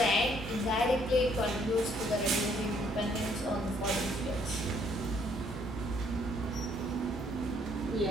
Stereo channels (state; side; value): normal; both; correlation 0.66